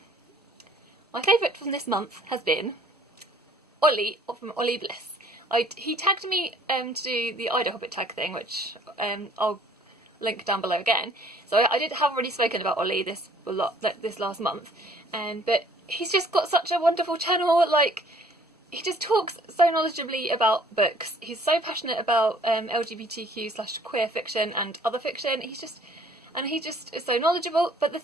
my favourite from this month has been Ollie from Ollie Bliss. He tagged me to do the Ida Hobbit tag thing, which I'll link down below again. So I have already spoken about Ollie this last month, but he's just got such a wonderful channel. Like, he just talks so knowledgeably about books. He's so passionate about LGBTQ/queer fiction and other fiction. He just is so knowledgeable. But the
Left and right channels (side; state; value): both; normal; correlation 0.57